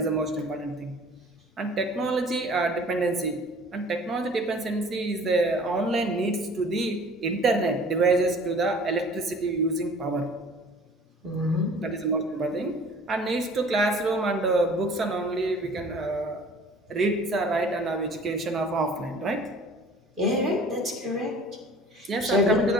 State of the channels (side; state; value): both; normal; correlation 0.48